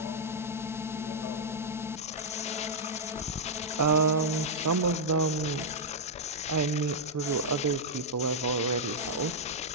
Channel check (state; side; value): normal; both; correlation -0.05